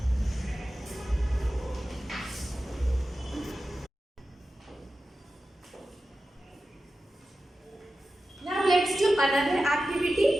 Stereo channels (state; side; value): normal; both; correlation 0.93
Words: Now let's do another activity.